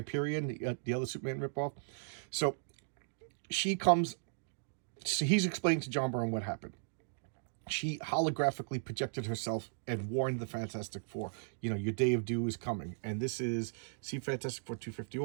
the other Superman ripoff? So he's explaining to John Byrne what happened. She holographically projected herself and warned the Fantastic Four, your day of doom is coming. And this is, Fantastic Four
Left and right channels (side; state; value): left; silent; digital silence